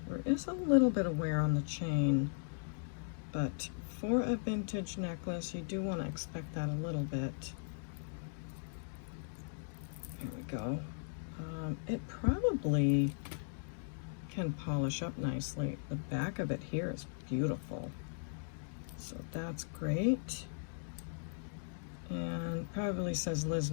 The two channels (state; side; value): silent; right; digital silence